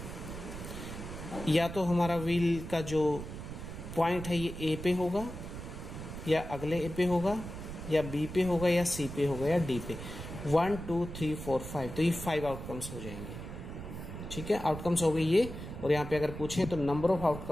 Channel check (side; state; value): right; noise; rumble, 9 dB below the sound